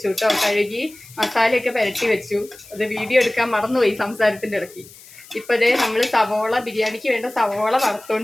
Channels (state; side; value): noise; left; hiss, 21 dB below the sound